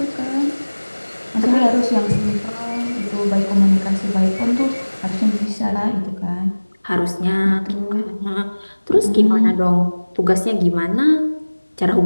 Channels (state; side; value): inverted; both; correlation -1.00